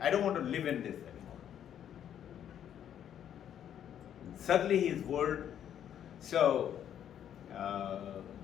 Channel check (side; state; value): right; quieter; 9.8 dB